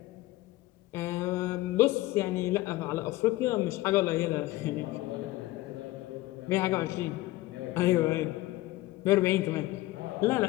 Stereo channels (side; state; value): right; quieter; 18.0 dB